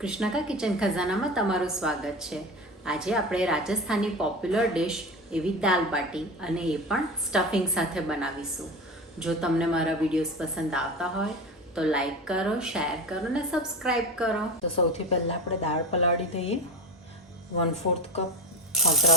કિચન ખજાનામાં તમારું સ્વાગત છે. આજે આપણે રાજસ્થાની પોપ્યુલર ડિશ એવી દાલ બાટી અને એ પણ સ્ટફિંગ સાથે બનાવીશું. જો તમને મારા વિડીયોઝ પસંદ આવતા હોય તો લાઈક કરો, શેર કરો અને સબસ્ક્રાઈબ કરો. તો સૌથી પહેલાં આપણે દાળ પલાળી દઈએ. 1/4 કપ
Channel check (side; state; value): both; normal; correlation 0.26